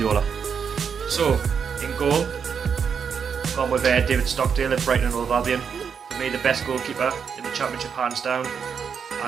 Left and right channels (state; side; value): quieter; left; 6.7 dB